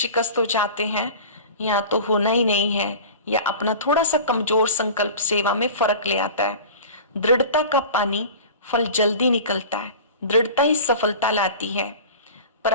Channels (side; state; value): both; inverted; correlation -0.37